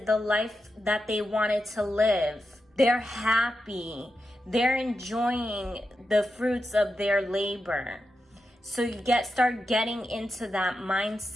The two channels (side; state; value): both; normal; correlation 0.88